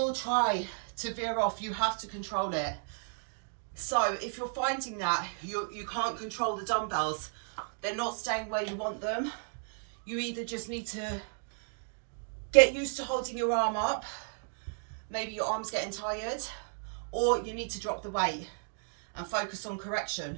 try to veer off. You have to control it. So if you're finding that you can't control the dumbbells, they're not staying where you want them, you either just need to get used to holding your arm up, maybe your arm's getting tired, or you need to drop the weight and focus on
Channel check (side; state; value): left; silent; 55 dB below the other